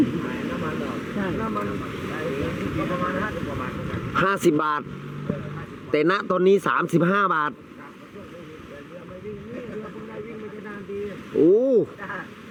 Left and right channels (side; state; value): both; identical; correlation 1.00